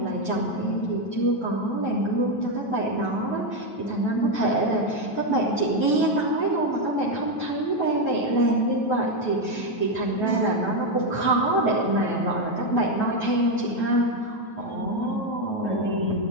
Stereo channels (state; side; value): late; right; 9.3 ms